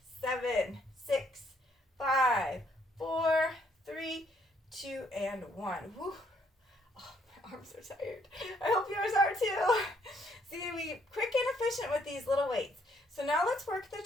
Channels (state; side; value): normal; both; correlation 0.68